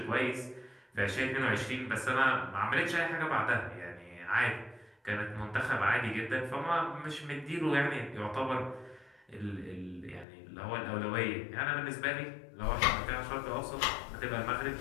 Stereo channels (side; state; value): right; drops out; at 10.2 s